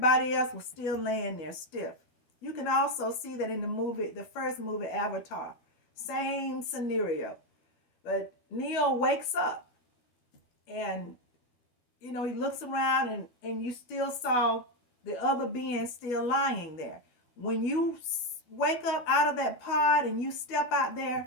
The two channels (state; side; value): late; right; 12 ms